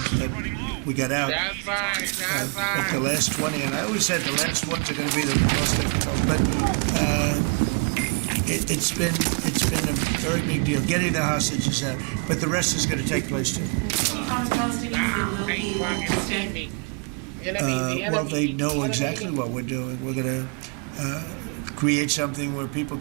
We got out. But the last 20, and I always said the last ones are going to be the most difficult. But it's been a very big deal getting the hostages out. But the rest is going to take place too. Well, they know exactly what we're doing. We're going to create something where people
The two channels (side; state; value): left; quieter; 36.3 dB